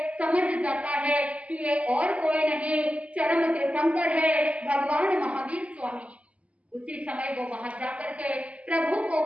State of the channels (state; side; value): late; left; 0.065 ms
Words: समझ जाता है कि ये और कोई नहीं, चरम तीर्थंकर है भगवान महावीर स्वामी। उसी समय वो वहां जाकर के प्रभु को